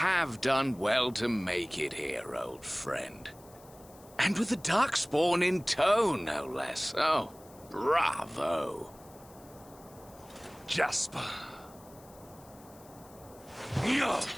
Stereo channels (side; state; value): left; noise; hiss, 24 dB below the sound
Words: done well to make it here, old friend. And with the Darkspawn in tow, no less. Oh, bravo. Jasper. Yeah.